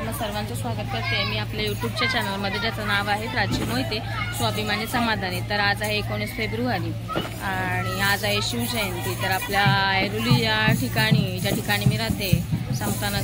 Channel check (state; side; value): identical; both; correlation 1.00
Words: सर्वांचं स्वागत करते मी आपल्या यूट्यूबच्या चॅनलमध्ये, ज्याचं नाव आहे प्राची मोहिते स्वाभिमानी समाधानी. तर आज आहे 19 फेब्रुवारी आणि आज आहे शिवजयंती. तर आपल्या ऐरोली या ठिकाणी, ज्या ठिकाणी मी राहते,